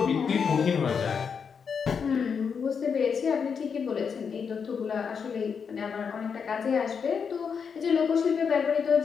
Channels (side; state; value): right; quieter; 6.3 dB